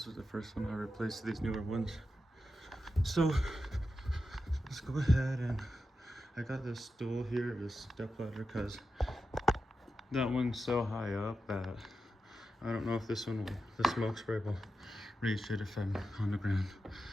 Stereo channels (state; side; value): normal; both; correlation 0.90